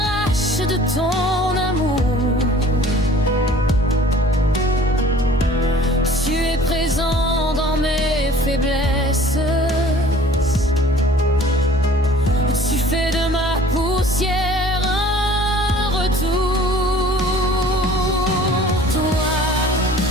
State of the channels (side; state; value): both; normal; correlation 0.50